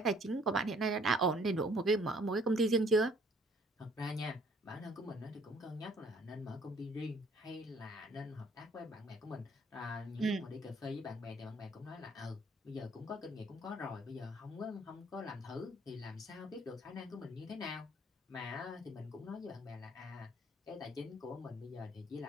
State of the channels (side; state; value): both; normal; correlation 0.60